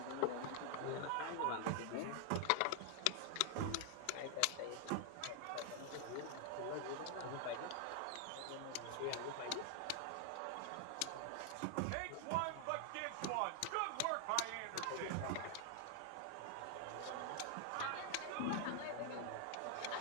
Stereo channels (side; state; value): both; different; correlation 0.00